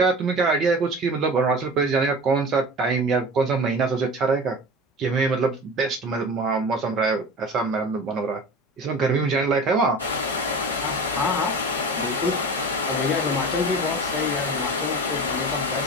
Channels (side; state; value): both; normal; correlation 0.34